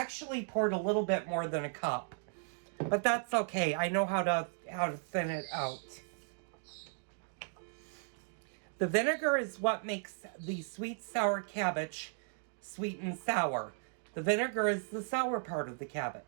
poured a little bit more than 1 cup. But that's okay. I know how to thin it out. The vinegar is what makes the sweet sour cabbage sweet and sour. The vinegar is the sour part of the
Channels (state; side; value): silent; left; 54 dB below the other